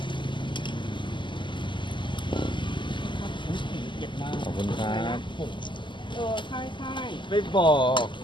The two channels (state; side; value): late; right; 0.23 ms